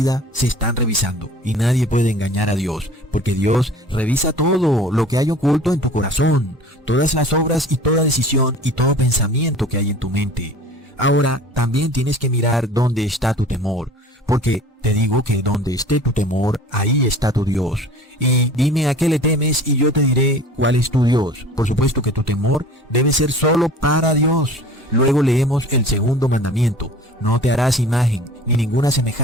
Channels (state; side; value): normal; both; correlation 0.44